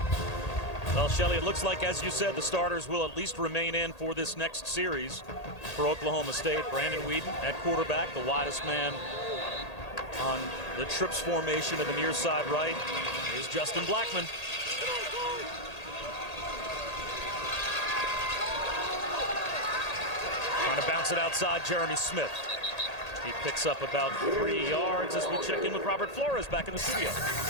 Well, Shelley, it looks like, as you said, the starters will at least remain in for this next series for Oklahoma State. Brandon Weeden at quarterback, the widest man on the trips formation to the near side right is Justin Blackman. Trying to bounce it outside, Jeremy Smith. He picks up about 3 yards as we check in with Robert Flores back in the studio.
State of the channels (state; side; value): late; right; 1.8 ms